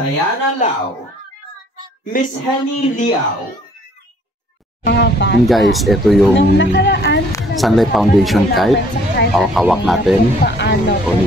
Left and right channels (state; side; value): normal; both; correlation 0.59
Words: Lau, Miss Henny Liao. And guys, ito yung Sunlight Foundation kite. hawak natin. O